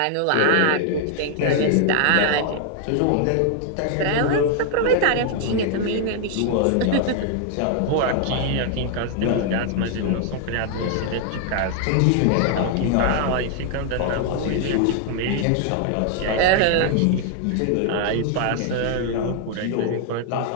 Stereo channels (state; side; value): different; both; correlation 0.00